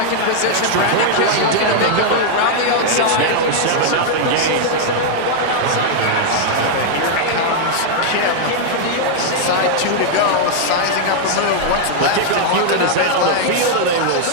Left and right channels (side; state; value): both; different; correlation -0.01